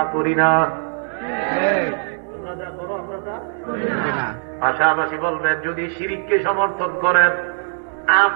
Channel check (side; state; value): left; silent; digital silence